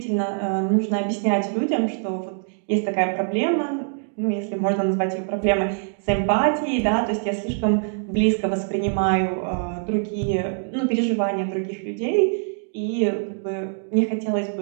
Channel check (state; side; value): silent; left; digital silence